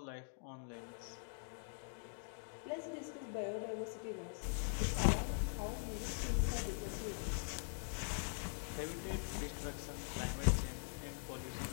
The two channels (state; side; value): silent; right; digital silence